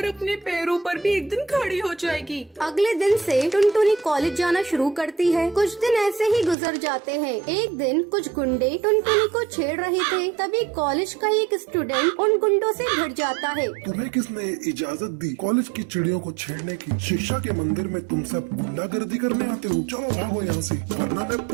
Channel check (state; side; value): drops out; left; at 6.6 s